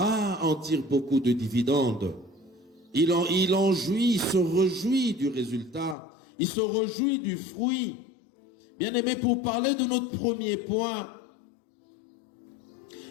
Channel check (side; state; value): right; drops out; at 6.0 s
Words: tire beaucoup de dividendes. Il en jouit, il se réjouit du résultat. Il se réjouit du fruit. Bien-aimé, pour parler de notre premier point,